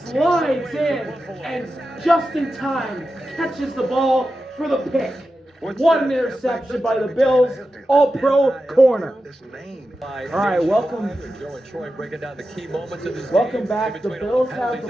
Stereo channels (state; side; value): normal; both; correlation 0.91